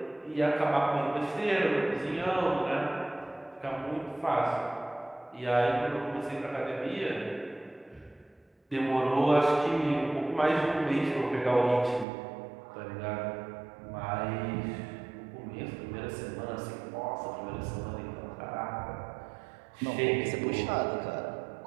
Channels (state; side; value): drops out; left; at 12.1 s